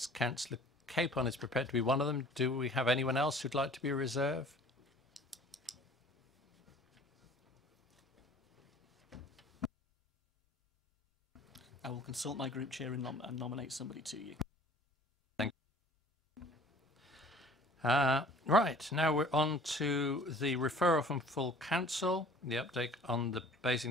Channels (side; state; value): both; normal; correlation 0.50